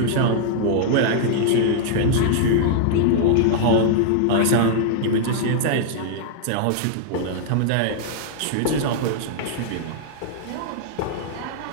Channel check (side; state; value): both; different; correlation -0.01